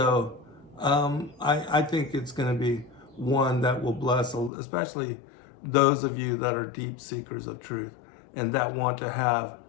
I think it's going to be one that will bless, especially those of you that are deep seekers of truth and that want to have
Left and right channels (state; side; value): drops out; right; at 4.5 s